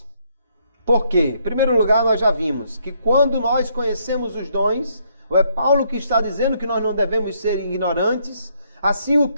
Por quê? Em primeiro lugar, nós já vimos que quando nós conhecemos os dons, é Paulo que está dizendo que nós não devemos ser ignorantes, Assim o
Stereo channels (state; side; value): inverted; both; correlation -0.71